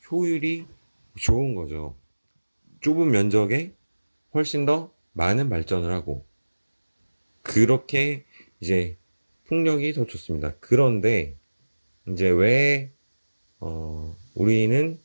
효율이 좋은 거죠. 좁은 면적에 훨씬 더 많은 발전을 하고 그렇게 이제 풍력이 더 좋습니다. 그런데 이제 왜 우리는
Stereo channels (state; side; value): inverted; both; correlation -1.00